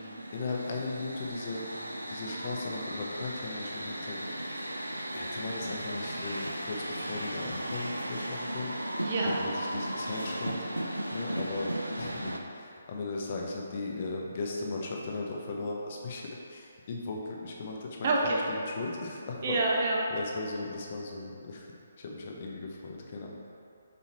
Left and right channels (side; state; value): both; inverted; correlation -0.78